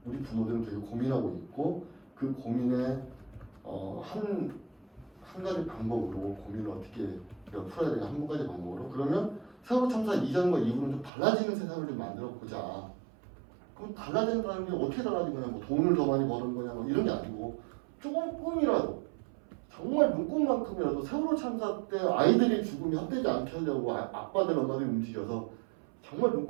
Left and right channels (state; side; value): drops out; left; at 11.1 s